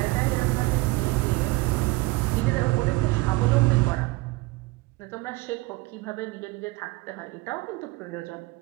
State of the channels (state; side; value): quieter; left; 21.9 dB